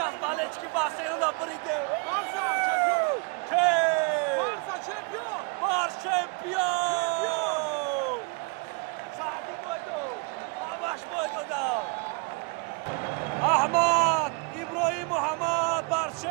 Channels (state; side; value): quieter; left; 31.1 dB